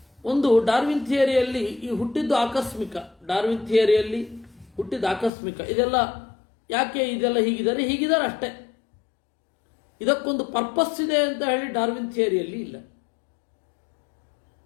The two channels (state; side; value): drops out; right; at 5.3 s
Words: ಒಂದು, ಡಾರ್ವಿನ್ ಥಿಯರಿಯಲ್ಲಿ ಈ ಹುಟ್ಟಿದ್ದು ಆಕಸ್ಮಿಕ, ಡಾರ್ವಿನ್ ಥಿಯರಿಯಲ್ಲಿ ಹುಟ್ಟಿದ್ದು ಆಕಸ್ಮಿಕ. ಇದೆಲ್ಲ ಯಾಕೆ ಇದೆಲ್ಲ ಹೀಗಿದ್ದಾರೆ ಅಷ್ಟೇ. ಇದಕ್ಕೊಂದು ಪರ್ಪಸ್ ಇದೆ ಅಂತ ಹೇಳಿ ಡಾರ್ವಿನ್ ಥಿಯರಿಯಲ್ಲಿ ಇಲ್ಲ.